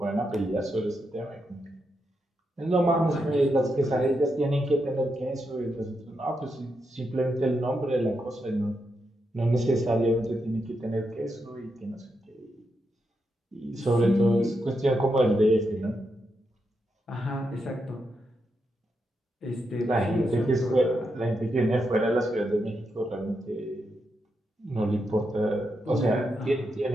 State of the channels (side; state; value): both; normal; correlation 0.84